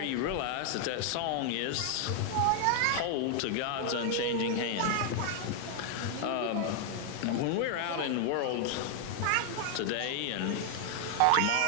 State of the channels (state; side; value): different; both; correlation 0.00